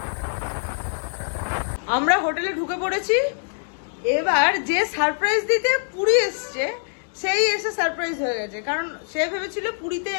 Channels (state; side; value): silent; right; digital silence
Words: আমরা হোটেলে ঢুকে পড়েছি। এবার যে সারপ্রাইজ দিতে পুরী এসছে সেই এসে সারপ্রাইজ হয়ে গেছে, কারণ সে ভেবেছিল পুরীতে